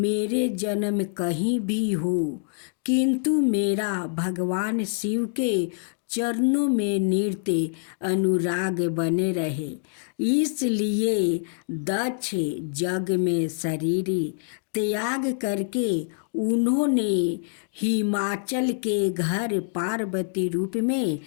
जन्म कहीं भी हो, किंतु मेरा भगवान शिव के चरणों में नृत्य अनुराग बने रहे। इसलिए दक्ष जग में शरीर त्याग करके उन्होंने हिमाचल के घर पार्वती रूप में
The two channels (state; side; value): silent; right; digital silence